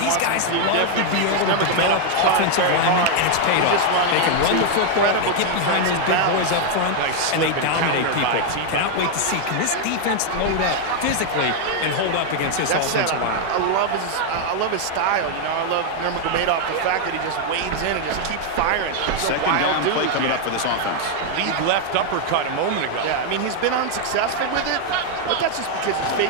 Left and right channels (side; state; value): both; different; correlation 0.00